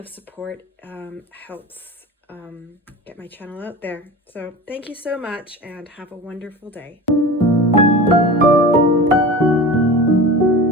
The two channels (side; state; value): both; normal; correlation 0.33